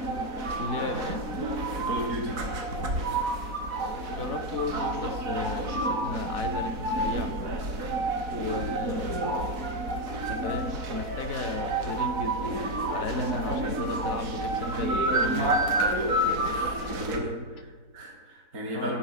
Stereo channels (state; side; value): late; left; 4.0 ms